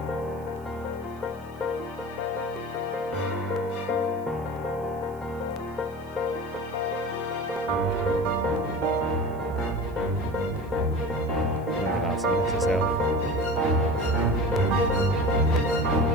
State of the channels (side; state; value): right; noise; hiss, 29 dB below the sound